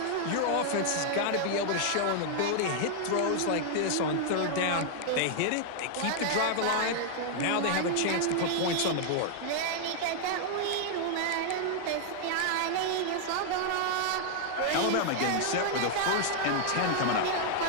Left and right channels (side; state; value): both; different; correlation 0.00